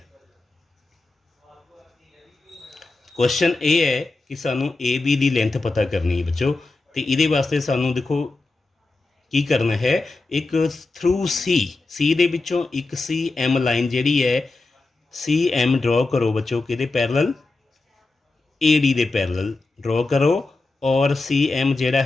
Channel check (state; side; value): quieter; right; 3.4 dB